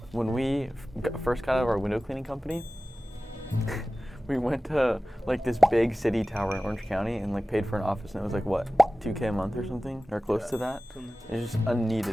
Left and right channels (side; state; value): both; normal; correlation 0.96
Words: When we first got out of our window cleaning company, we went to like this big city tower in Orange County and like paid for an office, and it was like what, $2K a month or something, or close to that. It's just